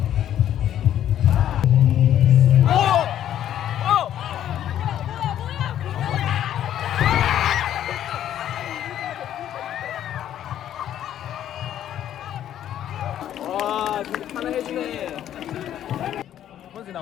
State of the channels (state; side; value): quieter; right; 11.1 dB